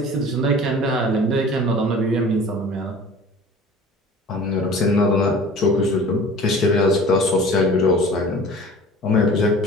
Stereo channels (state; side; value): normal; both; correlation 0.44